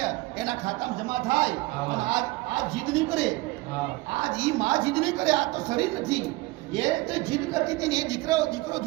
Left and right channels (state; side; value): quieter; left; 20.7 dB